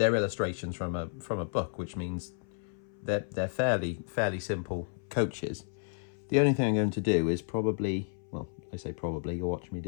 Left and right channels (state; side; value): silent; right; 56 dB below the other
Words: illustrations from a book, which means they're fairly simple coaches. The only thing I'm going to do is probably, well, I say probably, you'll watch me